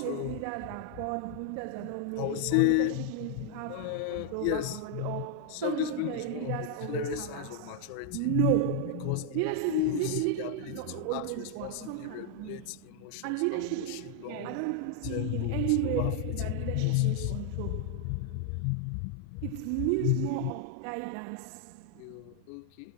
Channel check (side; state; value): both; different; correlation 0.00